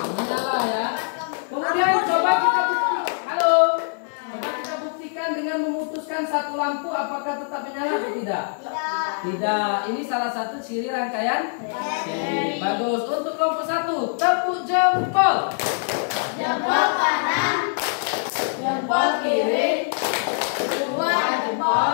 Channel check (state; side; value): silent; right; 63 dB below the other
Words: Menyala ya. Kemudian coba kita buktikan. Halo. Coba kita buktikan dengan memutuskan satu lampu apakah tetap menyala atau tidak? Tidak. Ini salah satu ciri rangkaian seri. Bagus. Untuk kelompok 1, tepuk jempol. Jempol kanan, Jempol kiri. dua